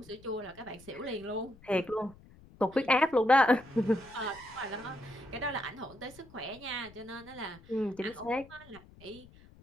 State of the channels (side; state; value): left; noise; rumble, 23 dB below the sound